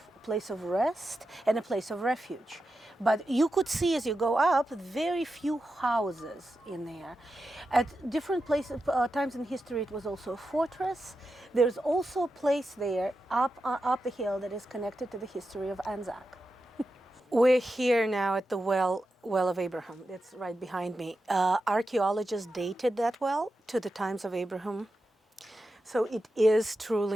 a place of rest, and a place of refuge. But you could see as you go up, very few houses in there. At different places, times in history, it was also a fortress. There's also a place there up the hill that is connected to the history of Anzac. We're here now at the well of Abraham. It's right behind me. Archaeologists dated that well to the times of Abraham. So it is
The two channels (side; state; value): both; normal; correlation 0.89